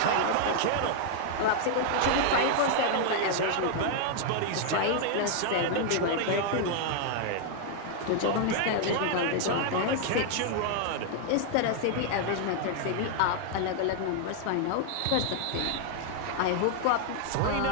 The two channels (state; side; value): different; both; correlation 0.00